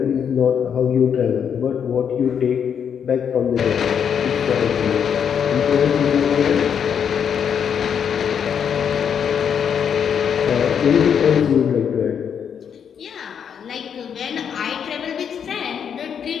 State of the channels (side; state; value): right; quieter; 7.7 dB